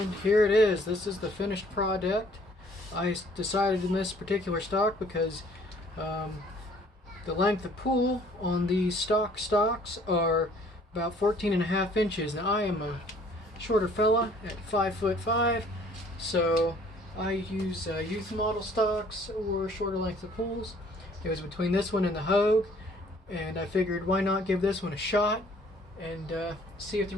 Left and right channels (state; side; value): normal; both; correlation 0.57